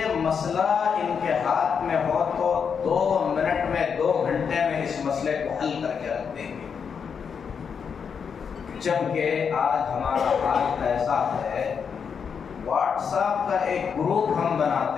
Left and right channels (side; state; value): right; quieter; 6.6 dB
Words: مسئلہ ان کے ہاتھ میں ہو تو 2 منٹ میں 2 گھنٹے میں اس مسئلے کو حل کر کے رکھ دیں گے. جبکہ آج ہمارا حال ایسا ہے، واٹس ایپ کا ایک گروپ ہم